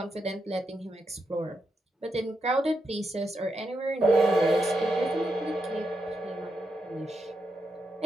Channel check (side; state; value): both; normal; correlation 0.84